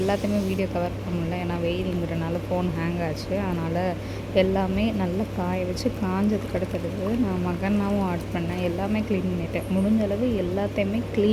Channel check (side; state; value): both; identical; correlation 1.00